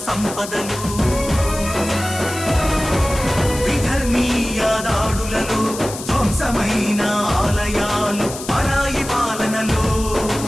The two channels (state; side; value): noise; left; hiss, 11 dB below the sound